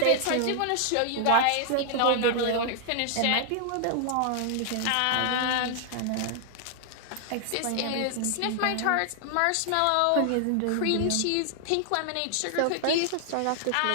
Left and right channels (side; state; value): both; different; correlation 0.00